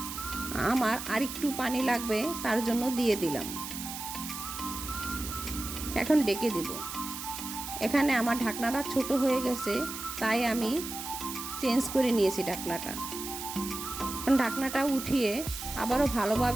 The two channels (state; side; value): noise; right; hiss, 8 dB below the sound